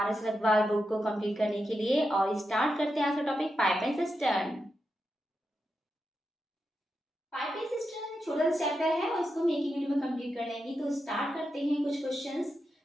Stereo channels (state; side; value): normal; both; correlation 0.87